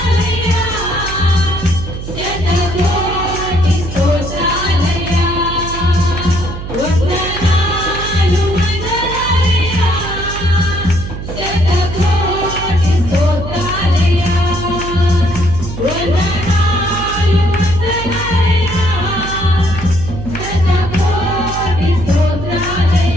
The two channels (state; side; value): noise; right; hum, 8 dB below the sound